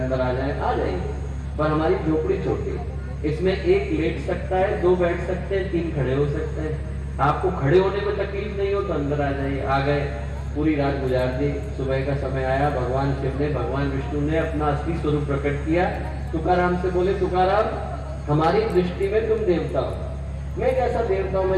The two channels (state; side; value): identical; both; correlation 1.00